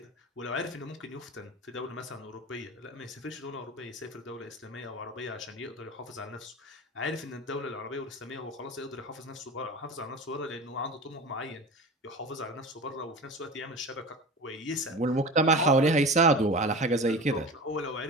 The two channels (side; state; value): both; normal; correlation 0.32